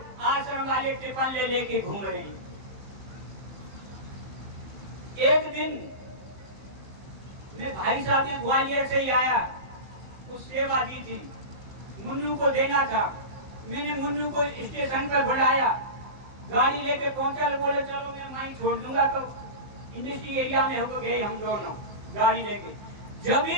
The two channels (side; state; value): left; late; 15 ms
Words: आश्रम वाले टिफिन ले लेके घूम रहे हैं। एक दिन मैं भाई साहब ने ग्वालियर से ही आया, कुछ सेवा दी थी, मुन्नू को देना था। मैंने मुन्नू को स्टेशन पर बुलाया, गाड़ी लेके पहुंचा, बोले चलो मैं वहीं छोड़ दूंगा। तो इंडस्ट्री एरिया में हो गए हम दोनों गाड़ी लेके। जब